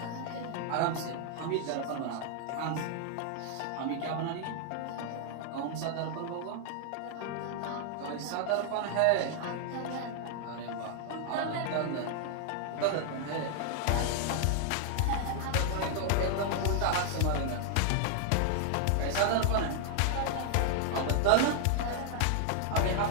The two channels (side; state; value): both; different; correlation 0.00